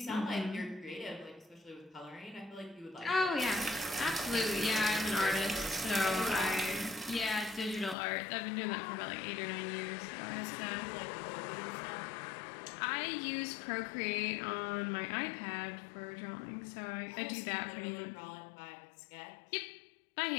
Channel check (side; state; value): right; drops out; at 8.0 s